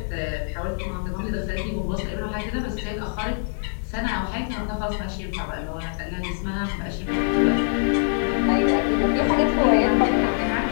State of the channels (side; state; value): right; silent; 61 dB below the other